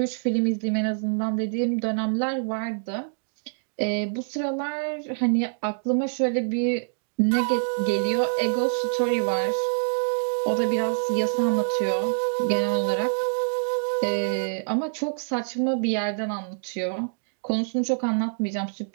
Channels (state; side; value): silent; left; digital silence